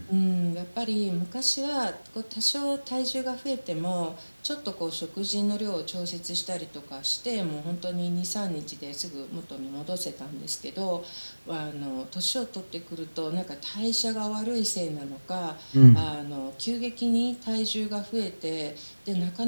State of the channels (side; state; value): both; inverted; correlation -1.00